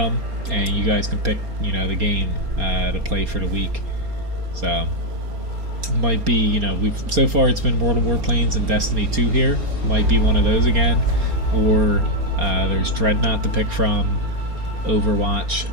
and you guys can pick, you know, the game to play for the week. So might be, you know, so far it's been World of Warplanes and Destiny 2 here. Might be one of those again, or there's Dreadnought to pick from, Overwatch,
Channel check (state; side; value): late; left; 4.3 ms